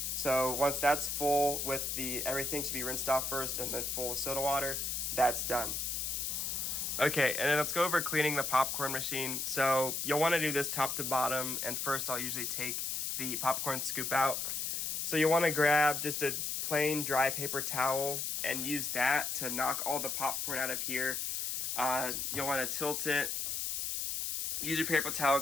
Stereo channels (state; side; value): noise; left; hiss, 1 dB below the sound